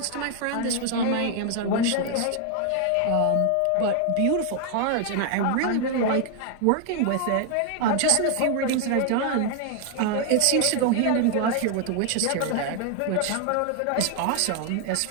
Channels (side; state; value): both; different; correlation 0.00